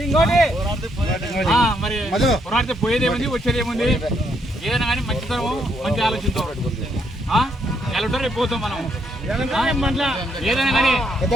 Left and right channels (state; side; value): normal; both; correlation 0.74